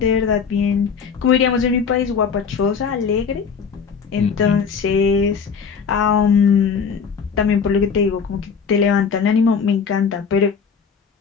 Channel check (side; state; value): right; quieter; 6.2 dB